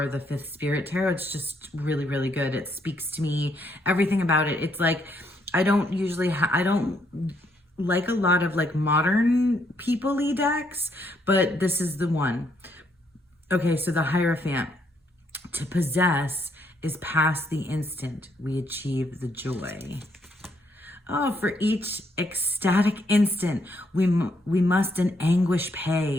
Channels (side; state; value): both; normal; correlation 0.73